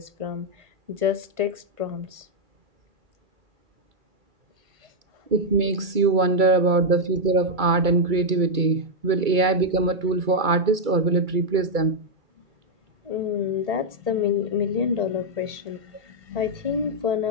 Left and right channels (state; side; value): late; left; 2.3 ms